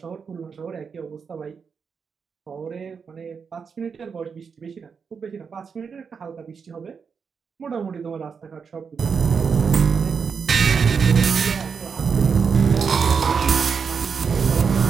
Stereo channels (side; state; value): left; quieter; 6.0 dB